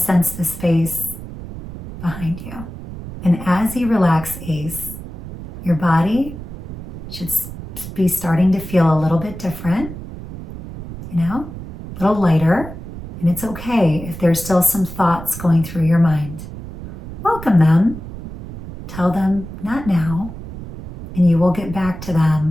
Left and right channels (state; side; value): noise; right; rumble, 11 dB below the sound